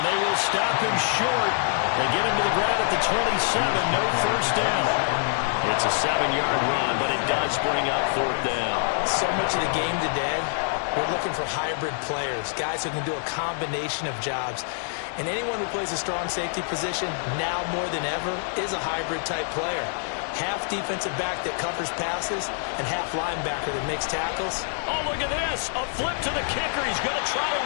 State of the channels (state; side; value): silent; right; digital silence